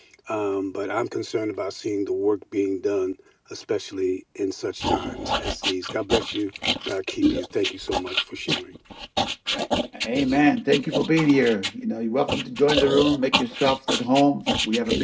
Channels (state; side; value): identical; both; correlation 1.00